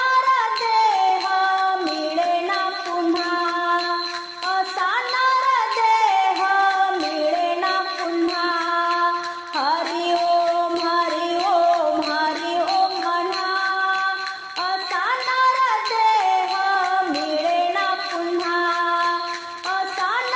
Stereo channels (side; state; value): both; identical; correlation 1.00